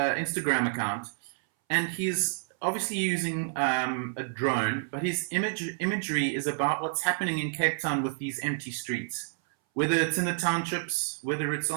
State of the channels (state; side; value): silent; left; 58 dB below the other